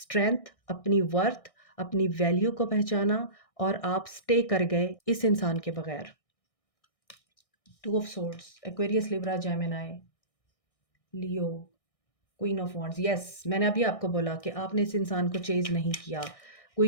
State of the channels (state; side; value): late; right; 1.6 ms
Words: अपनी वर्थ, अपनी वैल्यू को पहचाना, और आप स्टे कर गए इस इंसान के बगैर। 2 of swords, Aquarius, Libra, Gemini, Leo, queen of wands. Yes, मैंने अभी आपको बोला कि आपने इस इंसान को चेज़ नहीं किया।